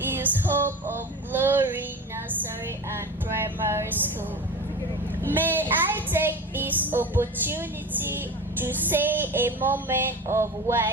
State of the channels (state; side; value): normal; both; correlation 0.31